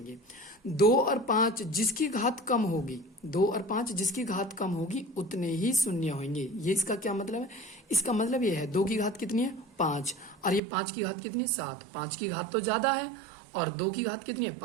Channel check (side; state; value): left; drops out; at 10.6 s